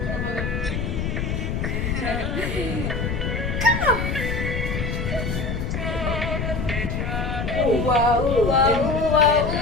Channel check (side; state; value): left; noise; rumble, 2 dB below the sound